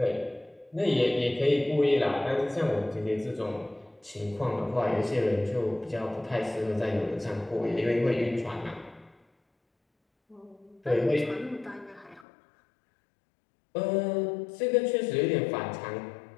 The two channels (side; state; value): right; drops out; at 12.2 s